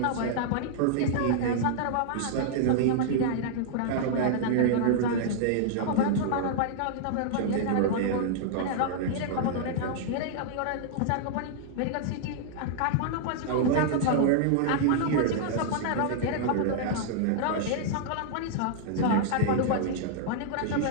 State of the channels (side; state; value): both; different; correlation -0.01